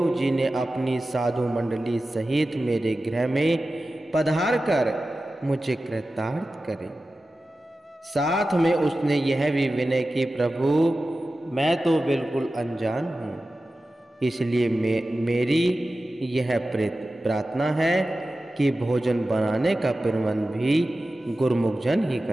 जी ने अपनी साधु मंडली सहित मेरे गृह में पधार कर मुझे कृतार्थ करे। साथ में उसने यह भी विनय की, प्रभु मैं तो बिल्कुल अनजान हूँ, इसलिए मेरी यह प्रार्थना है कि भोजन बनाने का प्रबंध भी गुरुमुख जन ही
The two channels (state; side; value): normal; both; correlation 0.94